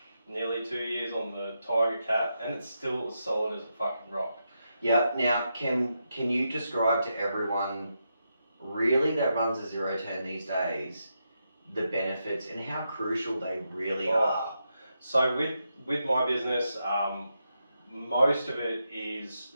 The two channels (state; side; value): inverted; both; correlation -0.85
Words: nearly 2 years on the Tiger Cat, and it's still as solid as a fucking rock. Yeah. Now, can you describe to everyone really that runs a 0-10 these days the benefits and how crucial they really are? So with my business, most of it is